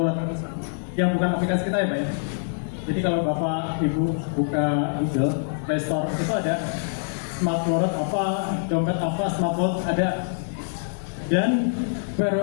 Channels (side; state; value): right; silent; 62 dB below the other